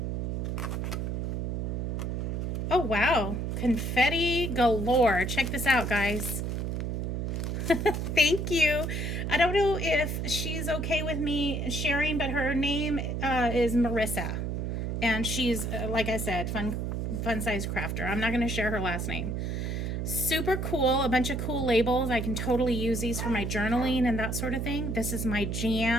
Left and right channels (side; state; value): right; noise; hum, 1 dB below the sound